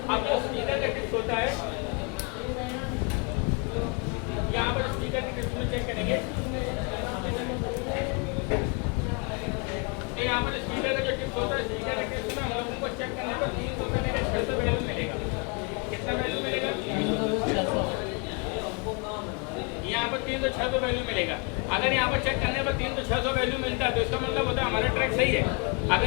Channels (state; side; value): quieter; right; 33.6 dB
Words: अब जो स्पीकर का टिप्स होता है, यहाँ पर स्पीकर की टिप्स में चेक करेंगे। यहाँ पर स्पीकर का जो टिप्स होता है, स्पीकर के टिप्स में हम लोगों को चेक करने पर 300 से लेकर 600 वैल्यू मिलेगा। कितना वैल्यू मिलेगा, यहाँ पर 3 तो 600 वैल्यू मिलेगा। अगर यहाँ पर चेक करने पर 3 तो 600 वैल्यू मिलता है तो इसका मतलब होता है हमारा ट्रैक सही है।